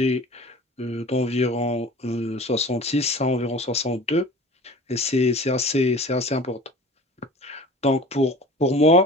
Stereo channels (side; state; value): both; normal; correlation 0.41